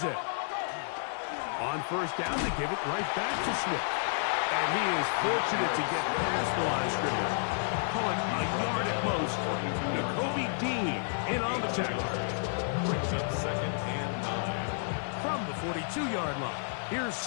On 1st down, they give it right back to Swift. And he is fortunate to get past the line of scrimmage. Call it a yard at most. Nakobe Dean in on the tackle. Brings up 2nd and 9. From the 42-yard line, here's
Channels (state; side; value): silent; right; digital silence